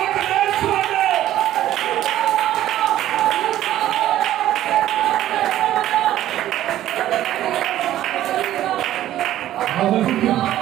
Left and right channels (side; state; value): left; quieter; 13.1 dB